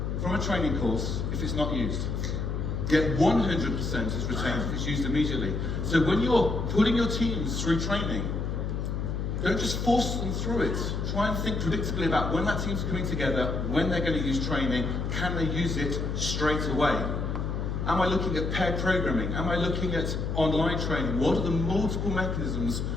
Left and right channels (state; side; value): noise; left; hum, 2 dB below the sound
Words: from a training course if it's not used. Yet 100% is retained if it's used immediately. So when you're putting your teams through training, don't just force them through it. Try and think predictably about when that team's coming together, when they're going to use training, can they use it straight away? Am I looking at pair programming? Am I looking at online training? What are the multiple mechanisms